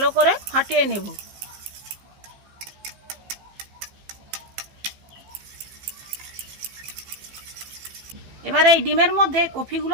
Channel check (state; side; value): late; left; 15 ms